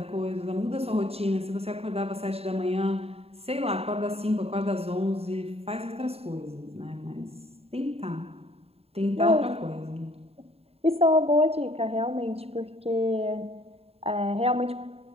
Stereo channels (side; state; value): left; late; 0.29 ms